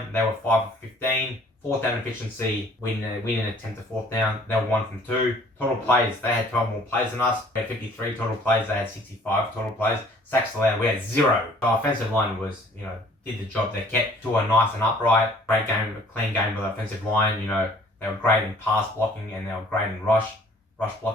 They were 5 for 15. 4th down efficiency, we didn't attempt a 4th down. They were 1 from 2. Total plays, they had 12 more plays than us. We had 53 total plays. They had 65 total plays. Sacks allowed, we had 0. The offensive line was, did the job. They kept Tua nice and upright. Great game, a clean game by the offensive line. They were great in pass blocking, and they were great in rush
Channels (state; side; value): normal; both; correlation 0.55